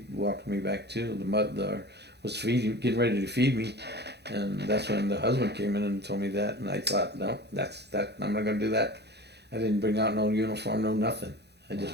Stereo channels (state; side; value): late; left; 0.49 ms